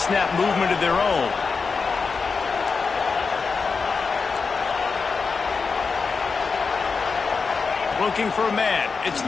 movement of their own. Looking for a man. It's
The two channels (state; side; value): quieter; right; 4.9 dB